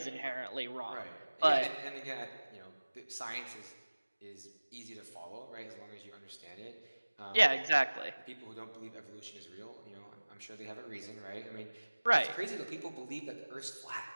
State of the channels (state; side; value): inverted; both; correlation -1.00